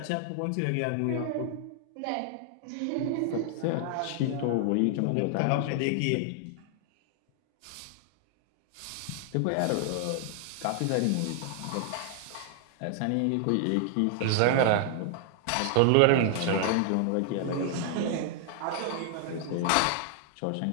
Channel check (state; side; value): different; both; correlation 0.00